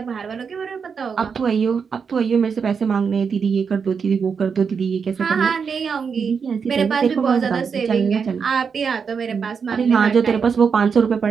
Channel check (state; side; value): quieter; left; 6.1 dB